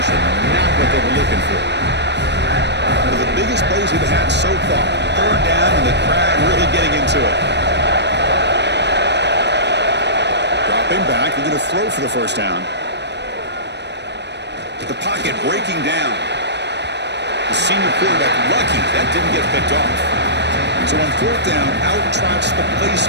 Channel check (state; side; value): late; left; 0.50 ms